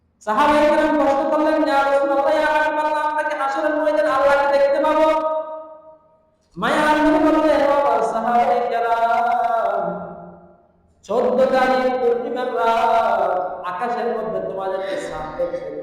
সাহাবায়ে কেরাম প্রশ্ন করলেন, ইয়া রাসূলুল্লাহ, ইয়া হাবিবাল্লাহ, আমরা কি হাসরের ময়দানে আল্লাহকে দেখতে পাবো? মায়ার নবী বললেন, ও সাহাবায়ে কেরাম, 14 তারিখ পূর্ণিমার রাত আকাশের মধ্যে তোমাদেরকে চাঁদ দেখতে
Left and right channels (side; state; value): both; identical; correlation 1.00